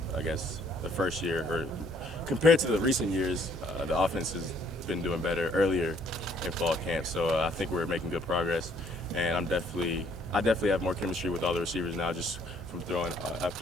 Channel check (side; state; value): both; normal; correlation 0.63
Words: I guess, the first year, or compared to the recent years, the offense has been doing better earlier in fall camp. So I think we're making good progress, and I definitely have more chemistry with all the receivers now, just from throwing